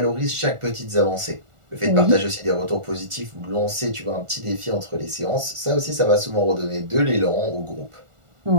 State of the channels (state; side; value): late; left; 1.4 ms